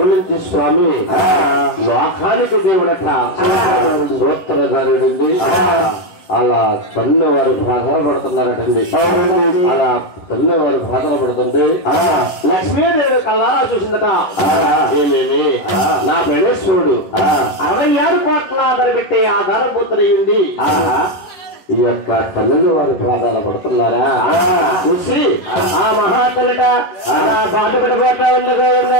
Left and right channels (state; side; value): late; right; 11 ms